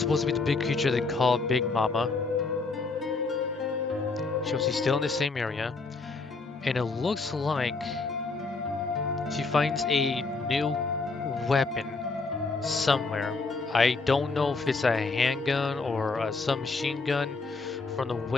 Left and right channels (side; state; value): right; quieter; 3.9 dB